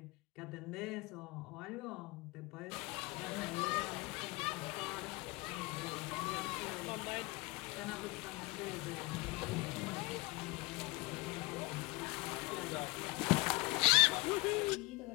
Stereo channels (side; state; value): right; quieter; 24.4 dB